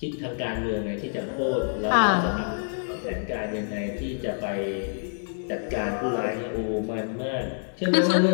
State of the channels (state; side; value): silent; right; digital silence